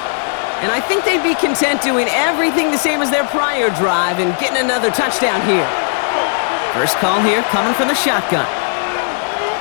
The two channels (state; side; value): silent; right; digital silence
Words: And I think they'd be content doing everything the same as their prior drive and getting another touchdown here. First call here coming from the shotgun.